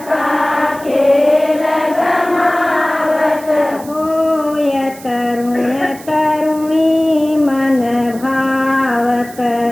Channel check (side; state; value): right; noise; hiss, 19 dB below the sound